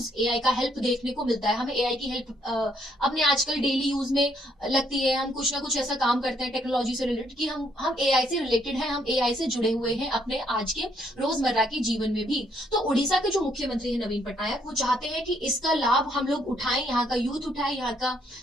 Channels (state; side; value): normal; both; correlation 0.70